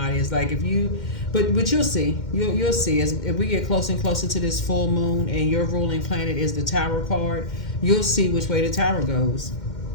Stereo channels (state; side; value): late; right; 2.1 ms